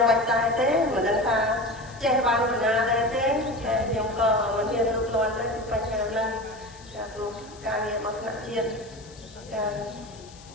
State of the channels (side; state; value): left; noise; hiss, 22 dB below the sound